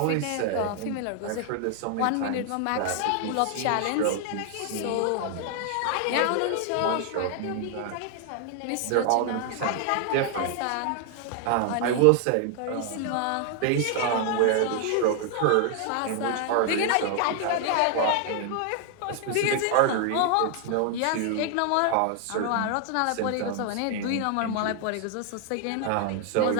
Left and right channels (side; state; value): both; different; correlation 0.00